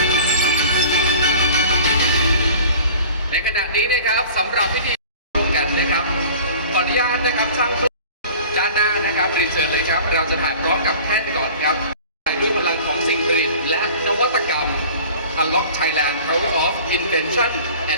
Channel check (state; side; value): inverted; both; correlation -0.43